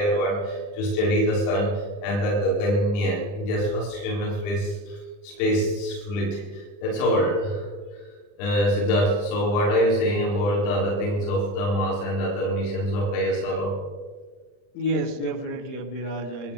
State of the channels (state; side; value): late; right; 39 ms